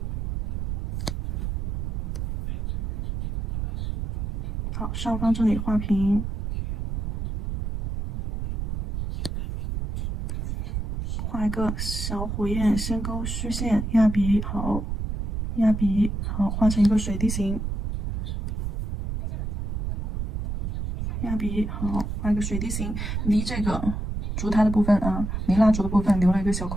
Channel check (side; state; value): right; noise; rumble, 3 dB below the sound